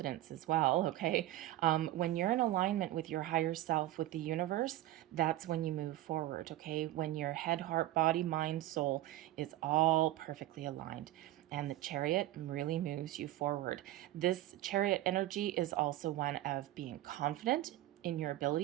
as well, okay? When you're in alignment with your higher self, with the universe, that's when you move forward, okay? When your head, heart, body, mind, soul is all perfectly aligned. And the Chariot really moves you forward. This Chariot energy is also one of being confident in your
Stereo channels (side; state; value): left; quieter; 15.4 dB